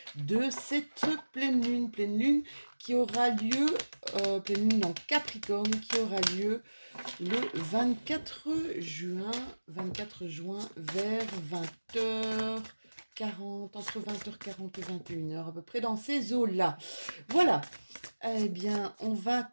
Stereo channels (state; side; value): inverted; both; correlation -1.00